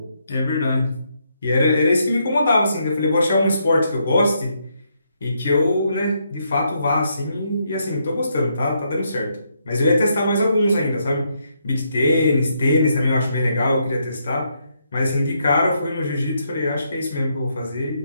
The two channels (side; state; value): both; inverted; correlation -0.77